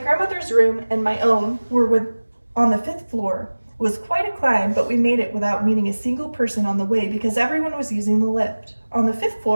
room and my own were on the 5th floor. It was quite a climb, but we made it without meeting a single person on the way because everyone was using the lift. On the 5th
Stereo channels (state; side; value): inverted; both; correlation -1.00